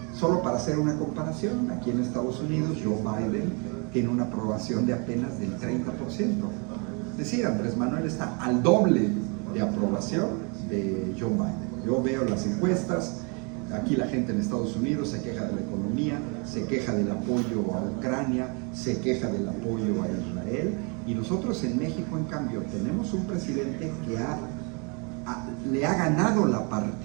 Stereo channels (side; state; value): left; quieter; 34.2 dB